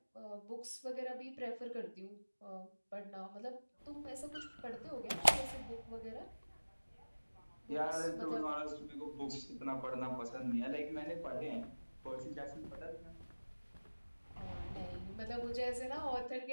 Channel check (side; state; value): both; inverted; correlation -1.00